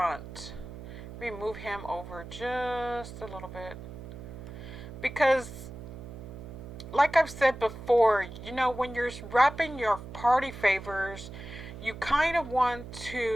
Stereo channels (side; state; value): right; noise; hum, 12 dB below the sound